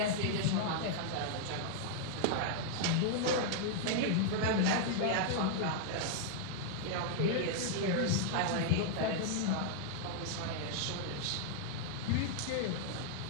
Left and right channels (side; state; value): both; different; correlation -0.01